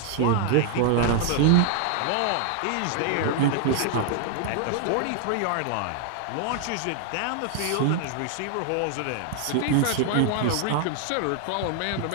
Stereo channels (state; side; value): different; both; correlation 0.00